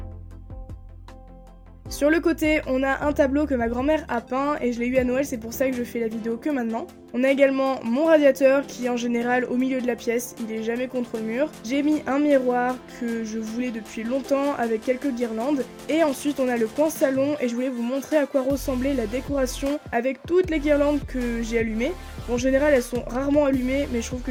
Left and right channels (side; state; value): both; identical; correlation 1.00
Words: Sur le côté, on a un tableau que ma grand-mère a peint et je l'ai eu à Noël, c'est pour ça que je fais la vidéo que maintenant. On a également mon radiateur qui est en général au milieu de la pièce, il est jamais contre le mur. J'ai mis un miroir que je voulais depuis longtemps avec quelques guirlandes. Et ensuite on a le coin salon et je voulais vous montrer à quoi ressemblait la décoration avec toutes les guirlandes que j'ai allumées. En général elles sont rarement allumées mais je trouve